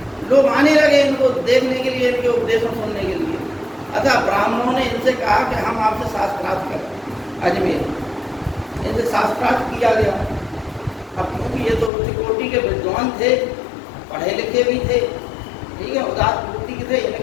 लोग आने लगे इनको देखने के लिए, इनके उपदेशों सुनने के लिए। अतः ब्राह्मणों ने इनसे कहा कि हम आपसे शास्त्रार्थ करें। अजमेर इनसे शास्त्रार्थ किया गया। अब क्योंकि ये तो उच्च कोटि के विद्वान थे, पढ़े लिखे भी थे, ठीक है, उदार बुद्धि के थे,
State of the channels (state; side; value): drops out; right; at 11.9 s